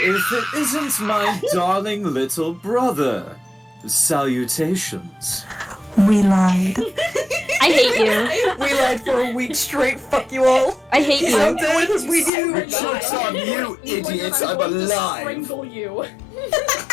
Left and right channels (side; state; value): right; drops out; at 12.3 s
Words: it isn't my darling little brother? Salutations. We lied. I hate you. We lied for a week straight. Fuck you all. I hate How you. dare we do? The joke's on you, idiots. I'm going to alive. strangle you.